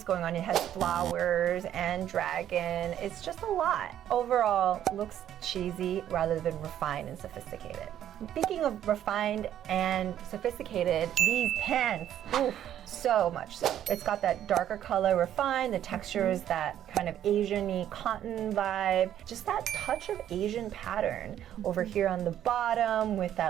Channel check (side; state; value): left; quieter; 10.9 dB